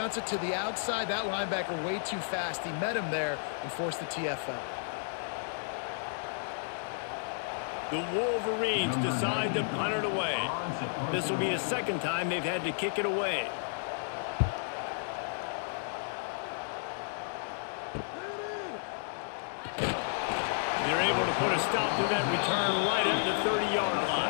it to the outside. That linebacker way too fast. He met him there and forced the TFL. The Wolverines decide to punt it away. This will be the 2nd time they've had to kick it away. They're able to put a stop to that return right at the 30-yard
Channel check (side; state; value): right; silent; digital silence